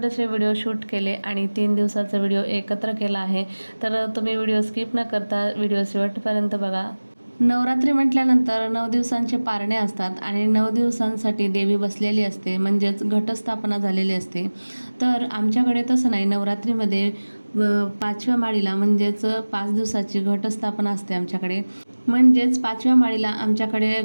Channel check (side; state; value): both; inverted; correlation -1.00